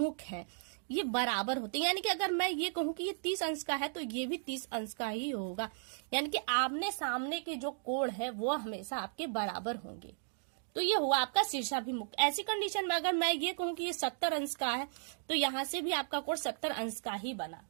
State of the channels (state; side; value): silent; left; digital silence